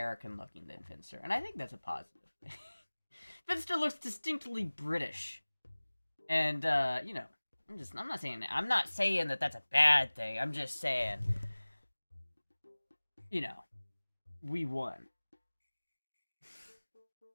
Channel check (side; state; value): both; inverted; correlation -1.00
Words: looking than Finster, and I think that's a positive. Finster looks distinctly British, and you know, I'm not saying that that's a bad thing. I'm just saying, you know, we won.